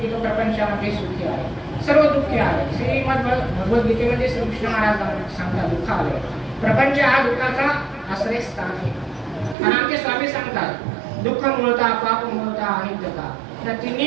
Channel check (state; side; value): drops out; left; at 9.6 s